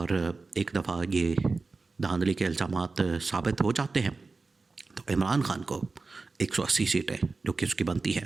एक दफ़ा ये धांधली के इल्ज़ामात साबित हो जाते हैं तो इमरान खान को 180 सीटें जो कि उसकी बनती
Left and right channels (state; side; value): quieter; left; 3.9 dB